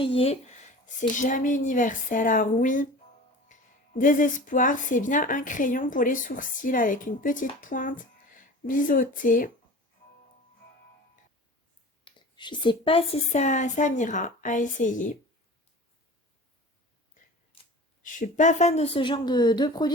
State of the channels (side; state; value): both; normal; correlation 0.38